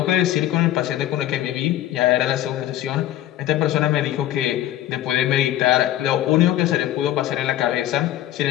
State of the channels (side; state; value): right; quieter; 13.2 dB